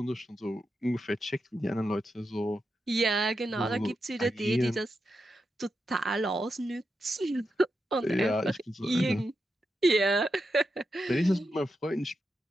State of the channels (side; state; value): both; normal; correlation 0.87